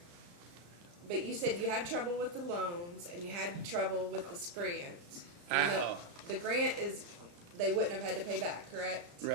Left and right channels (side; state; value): left; late; 35 ms